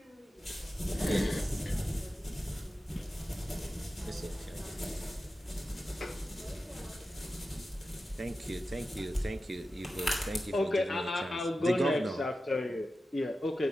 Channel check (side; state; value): both; normal; correlation 0.93